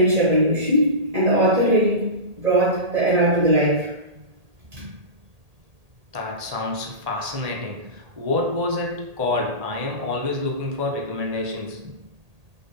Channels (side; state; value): left; late; 1.8 ms